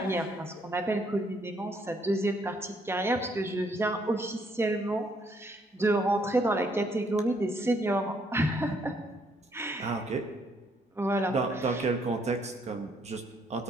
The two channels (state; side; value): normal; both; correlation 0.70